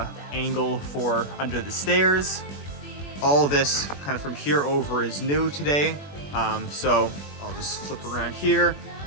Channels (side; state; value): right; late; 21 ms